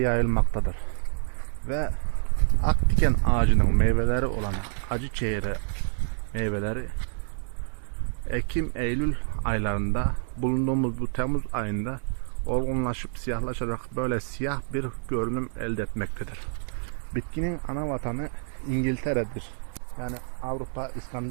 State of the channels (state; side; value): silent; left; digital silence